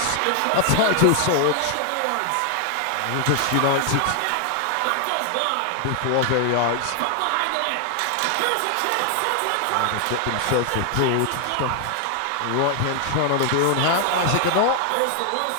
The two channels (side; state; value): both; different; correlation 0.00